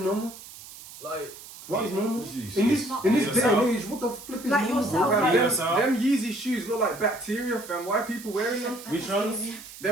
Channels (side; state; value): right; noise; hiss, 16 dB below the sound